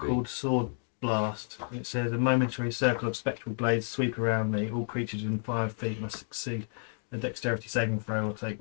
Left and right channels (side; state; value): right; silent; 57 dB below the other